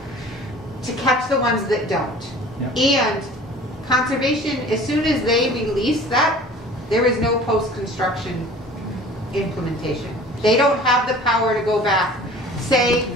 to catch the ones that don't. Yep. And conservation, as soon as they release that, there is no post-construction implementation. They don't have the power to go back. Say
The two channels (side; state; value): both; normal; correlation 0.45